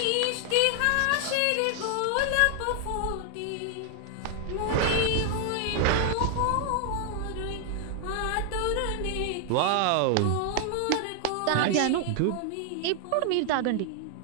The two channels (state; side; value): different; both; correlation 0.00